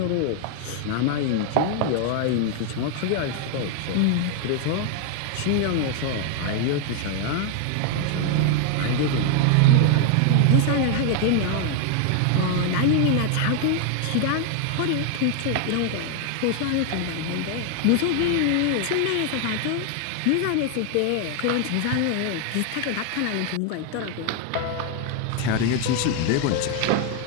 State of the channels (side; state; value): both; different; correlation 0.00